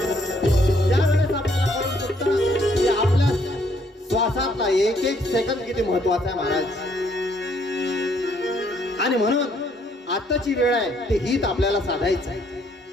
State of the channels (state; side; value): normal; both; correlation 0.67